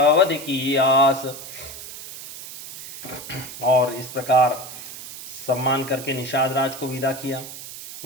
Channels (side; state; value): right; noise; hiss, 12 dB below the sound